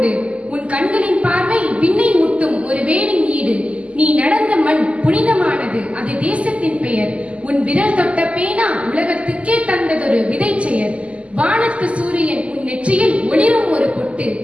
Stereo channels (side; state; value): left; late; 0.060 ms